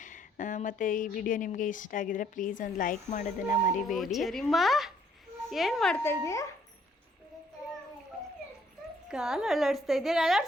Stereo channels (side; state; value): both; normal; correlation 0.66